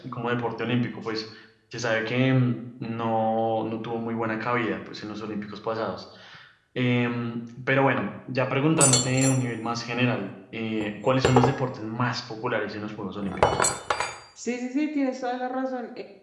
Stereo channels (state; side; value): identical; both; correlation 1.00